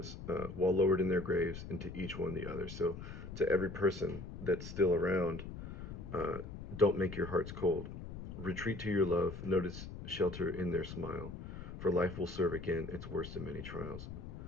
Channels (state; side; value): noise; left; rumble, 10 dB below the sound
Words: while lowered in their graves, and to each one the other. So to every person that's still around, don't make your hearts cold. Retreat to your love, notice shelter in their smile, for life will serve again its worst in many trials.